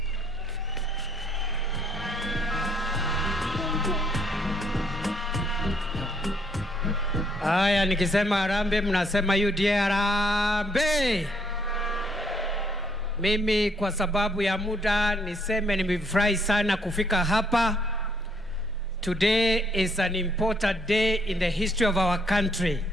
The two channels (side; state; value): both; normal; correlation 0.69